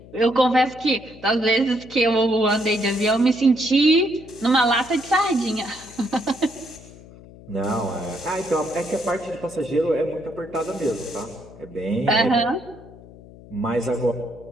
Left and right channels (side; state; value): left; noise; hum, 20 dB below the sound